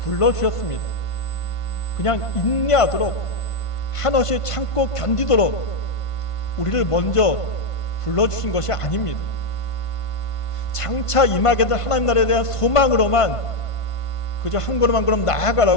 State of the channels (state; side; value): late; right; 1.5 ms